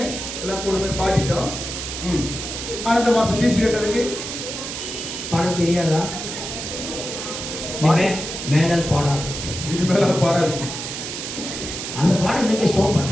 எல்லாம் கூடுமே பாடிட்டோம். ஆனா இந்த மாசம் ஃபீஸ் கட்டதுக்கு பாட தெரியாதா? மேடல் பாடாது. இனிமேல பாடாது. அந்த பாடம் இன்னைக்கு ஸ்டாப்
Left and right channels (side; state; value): right; noise; hiss, 6 dB below the sound